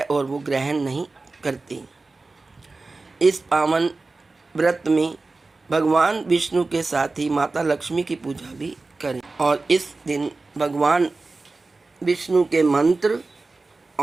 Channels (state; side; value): quieter; left; 3.6 dB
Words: और वो ग्रहण नहीं करते। इस पावन व्रत में भगवान विष्णु के साथ ही माता लक्ष्मी की पूजा भी करें और इस दिन भगवान विष्णु के मंत्र